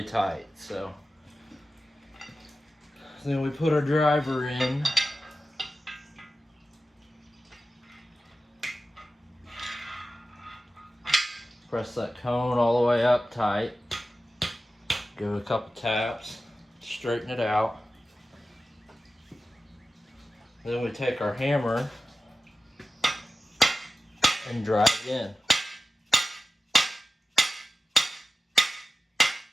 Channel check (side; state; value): both; normal; correlation 0.94